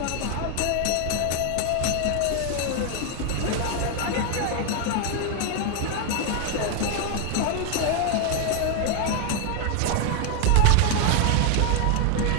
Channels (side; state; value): both; different; correlation 0.00